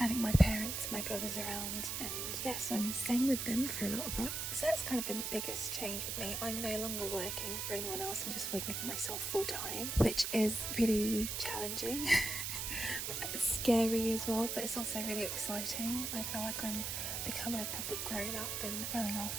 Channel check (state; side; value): noise; right; hiss, 2 dB below the sound